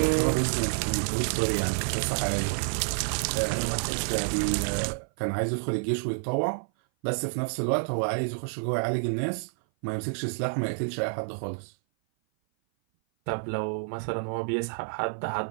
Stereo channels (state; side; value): silent; left; 56 dB below the other